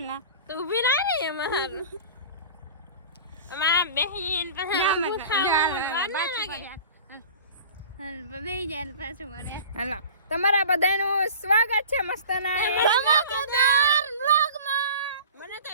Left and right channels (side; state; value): both; inverted; correlation -0.40